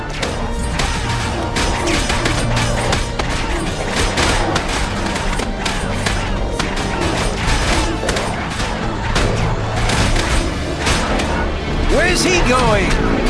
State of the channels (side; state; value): both; identical; correlation 1.00